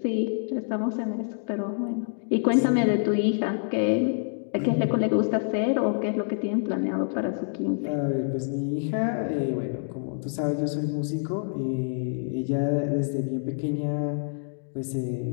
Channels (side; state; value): right; silent; digital silence